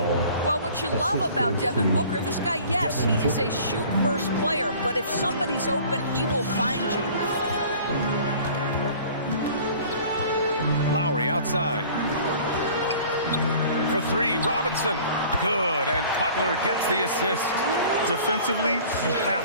Well, what you love about Devin Booker, this guy, yes, he is a shoot-first player, but if somebody's open, he will find you. Lowry outside. For three, Robinson. Good, and Butler gets the assist. Defensively, you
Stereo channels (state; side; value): inverted; both; correlation -0.48